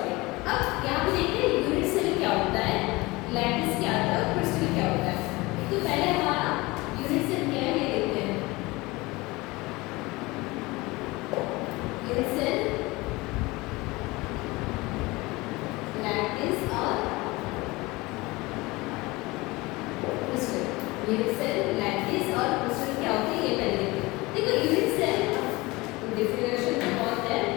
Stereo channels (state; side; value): quieter; right; 22.3 dB